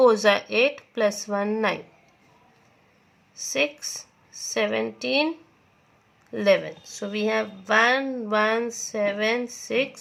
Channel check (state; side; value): identical; both; correlation 1.00